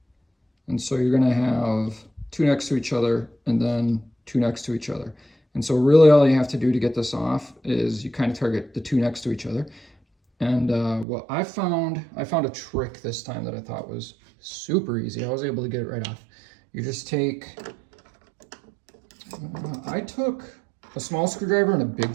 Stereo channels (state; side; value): drops out; left; at 11.1 s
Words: And so you're gonna have two next to each other and then two next to each other. And so really all you have to do to get this off is you kind of target the two next to each other. And what I found a trick this time that I thought was super easy. I was able to get it right off. You just take, I took a small screwdriver and a big